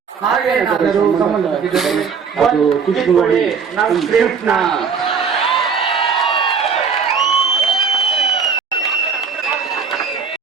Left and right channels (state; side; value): quieter; left; 6.0 dB